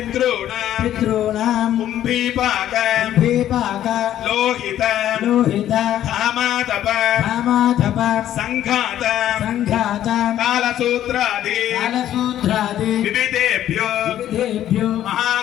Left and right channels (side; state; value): right; quieter; 11.9 dB